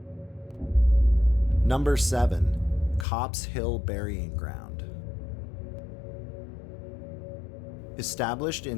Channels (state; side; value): drops out; right; at 3.1 s